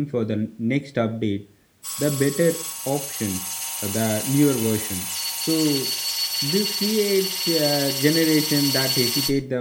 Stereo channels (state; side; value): identical; both; correlation 1.00